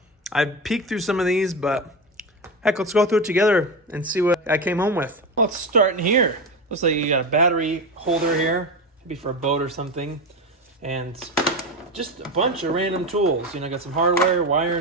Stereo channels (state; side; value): normal; both; correlation 0.19